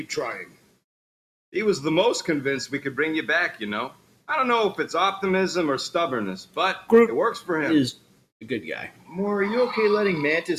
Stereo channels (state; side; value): identical; both; correlation 1.00